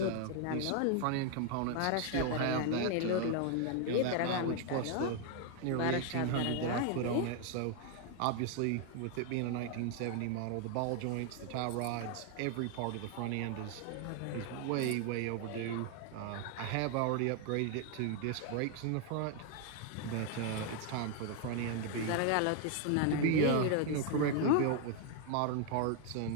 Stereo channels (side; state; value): both; different; correlation 0.00